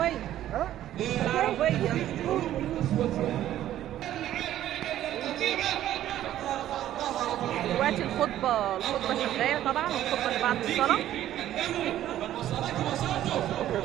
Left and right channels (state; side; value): quieter; left; 12.6 dB